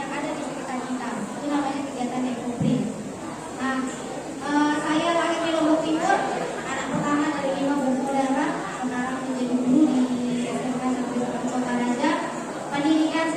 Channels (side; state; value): both; identical; correlation 1.00